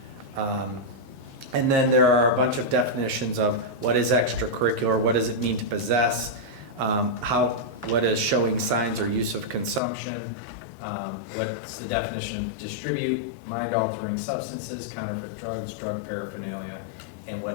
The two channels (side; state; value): right; drops out; at 9.8 s